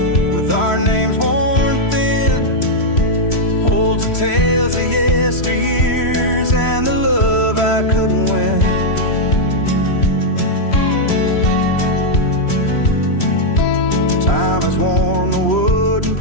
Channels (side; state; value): right; late; 3.1 ms